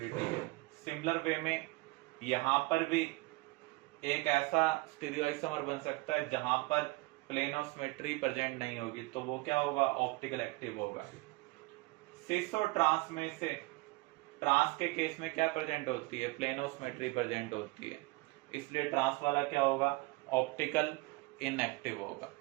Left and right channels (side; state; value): left; quieter; 23.6 dB